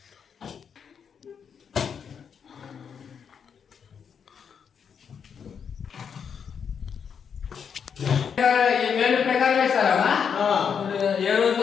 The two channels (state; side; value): quieter; right; 7.1 dB